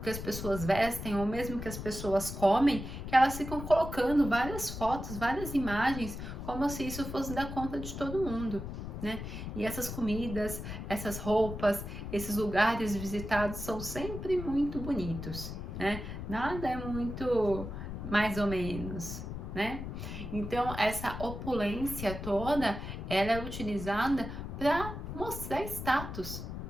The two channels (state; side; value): noise; left; rumble, 7 dB below the sound